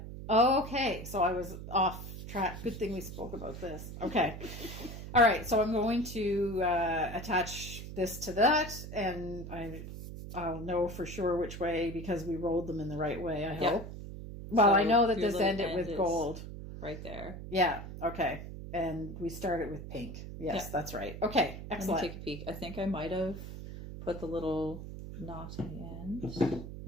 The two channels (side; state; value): right; noise; hum, 10 dB below the sound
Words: Okay. So I was off track. Good thing we spoke about this. Okay. All right. So I'm going to attach this to that, and I'll know for sure which way, because we rolled them in the right way, I hope. Well, so I know that this ended with gold. Right there. Yeah. Okay. And we started with pink. Yes, that's right. Okay. Excellent. Let me take a peek. I think I might have put the little knot in the end.